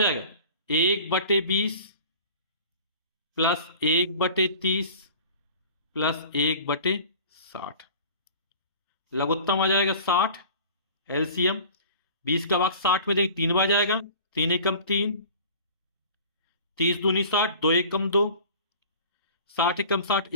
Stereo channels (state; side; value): inverted; both; correlation -0.44